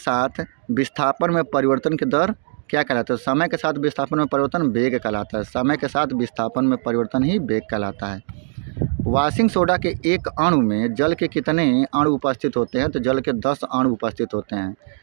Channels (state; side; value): silent; left; digital silence